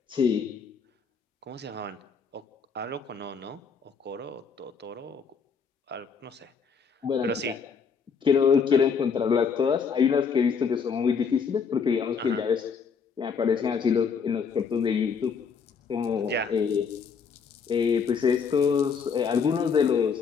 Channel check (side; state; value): right; quieter; 6.0 dB